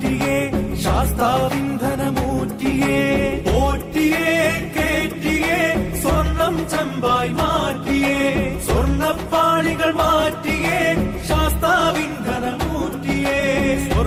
ശാസ്താവിന്ധനമൂറ്റിയേ പോറ്റിയേ കേറ്റിയേ സ്വർണം ചെമ്പായി മാറ്റിയേ സ്വർണ്ണപ്പാളികൾ മാറ്റിയേ ശാസ്താവിന്ധനമൂറ്റിയേ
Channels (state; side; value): identical; both; correlation 1.00